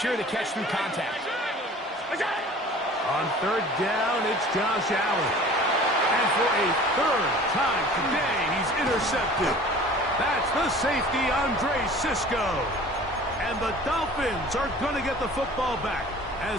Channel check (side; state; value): both; normal; correlation 0.45